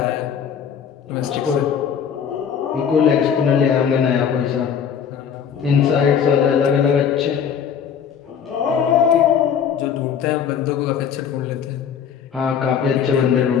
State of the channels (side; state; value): right; quieter; 7.8 dB